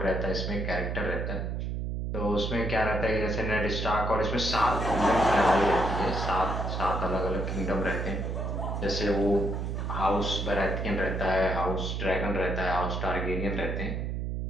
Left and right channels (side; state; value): right; noise; hum, 2 dB below the sound